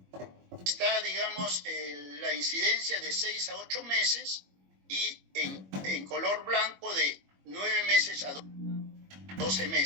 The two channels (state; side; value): late; left; 21 ms